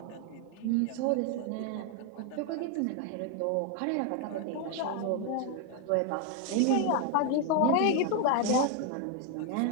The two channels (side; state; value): both; different; correlation 0.01